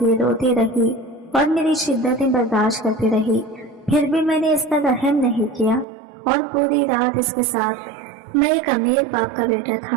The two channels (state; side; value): drops out; left; at 5.9 s